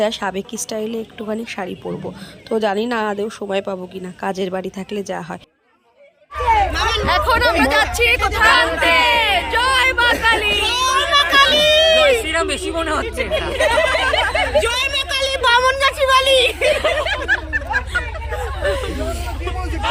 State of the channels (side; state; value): both; identical; correlation 1.00